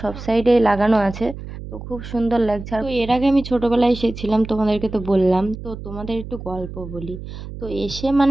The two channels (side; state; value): right; noise; hum, 11 dB below the sound